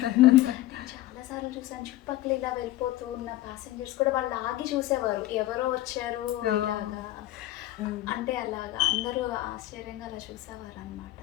చాలాసార్లు చూసాను చుట్టుపక్కల ఇలా వెళ్ళిపోతూ ఉన్న ప్యాసింజర్స్ కూడా వాళ్ళు ఆగి చూసేవారు, ఎవరో వచ్చారు ఇలాగా. అంటే అలాగా అందరూ ఆశ్చర్యంగా అలా చూసేవారు అనమాట.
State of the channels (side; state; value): right; quieter; 15.5 dB